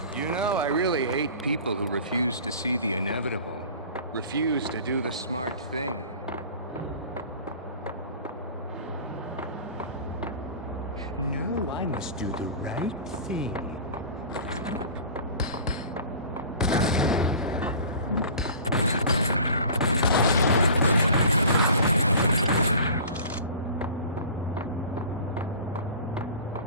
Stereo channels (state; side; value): inverted; both; correlation -0.41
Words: You know, I really hate people who refuse to see the inevitable. Refuse to do the smart thing. No, I must do the right thing.